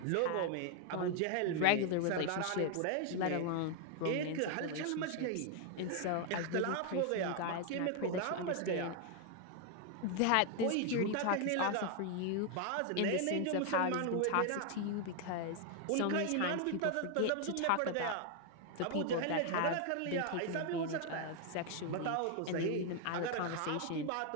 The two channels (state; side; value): different; both; correlation 0.00